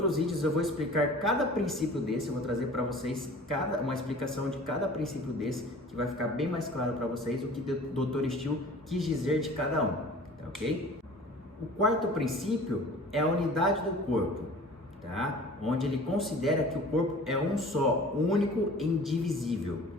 vídeos eu vou explicar cada princípio desse, eu vou trazer para vocês uma explicação de cada princípio desse, que vai ficar bem mais claro para vocês o que o Dr. Still quis dizer de cada um, tá ok? O quarto princípio é a unidade do corpo, tá? Onde ele considera que o corpo é um só, único e indivisível,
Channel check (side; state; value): both; normal; correlation 0.44